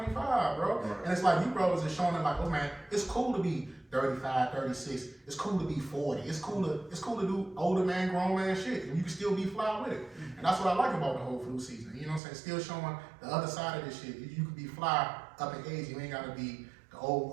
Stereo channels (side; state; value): left; drops out; at 12.2 s